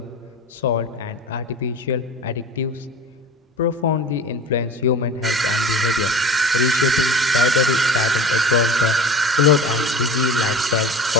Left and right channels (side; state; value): both; normal; correlation 0.36